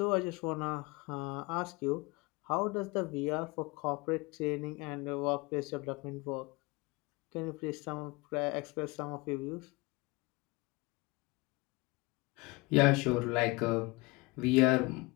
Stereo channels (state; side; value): quieter; right; 24.9 dB